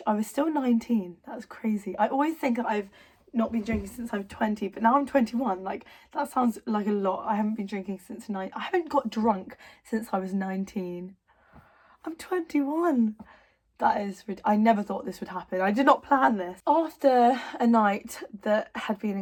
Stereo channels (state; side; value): identical; both; correlation 1.00